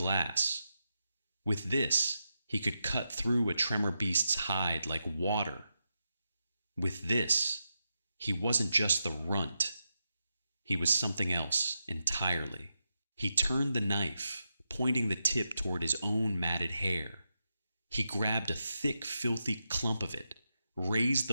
With this, he could cut through a tremor beast's hide like water. With this, he wasn't just the runt. He was something else entirely. He turned the knife, pointing the tip toward his own matted hair. He grabbed a thick, filthy clump of it, raised the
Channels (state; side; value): inverted; both; correlation -0.87